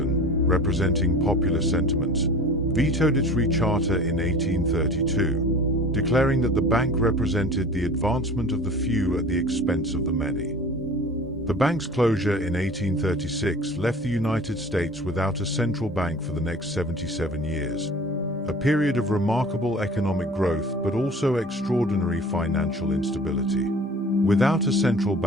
representing popular sentiments, vetoed its recharter in 1832, declaring that the bank represented the advancement of the few at the expense of the many. The bank's closure in 1836 left the United States without a central bank for the next 77 years, a period of remarkable economic growth but also extraordinary financial instability. Without a central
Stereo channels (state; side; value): normal; both; correlation 0.42